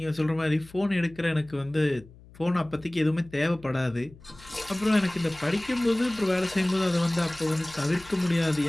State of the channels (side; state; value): left; noise; hum, 22 dB below the sound